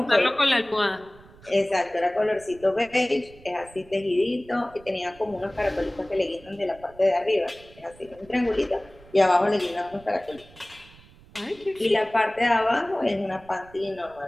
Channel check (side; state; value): right; noise; rumble, 24 dB below the sound